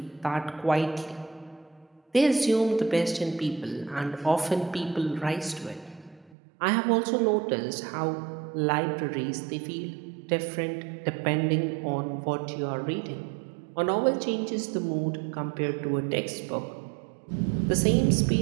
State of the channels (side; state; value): left; drops out; at 6.4 s